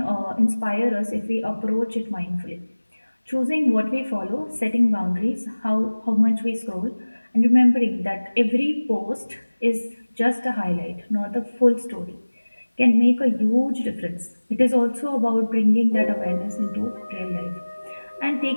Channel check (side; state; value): both; inverted; correlation -1.00